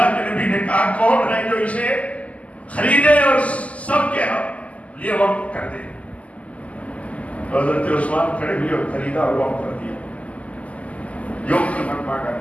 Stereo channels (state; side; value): late; right; 0.069 ms